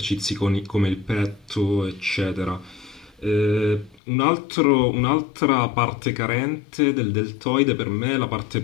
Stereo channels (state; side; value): drops out; right; at 4.0 s